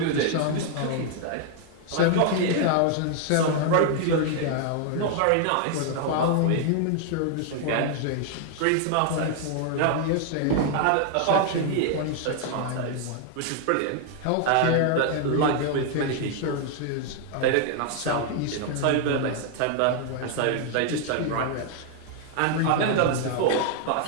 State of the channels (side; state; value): both; different; correlation 0.00